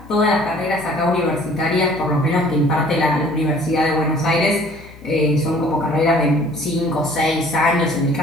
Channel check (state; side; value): noise; left; hum, 21 dB below the sound